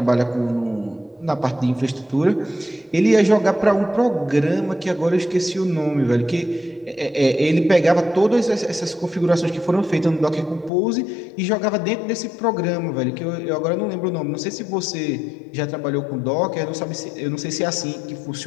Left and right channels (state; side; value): drops out; right; at 10.7 s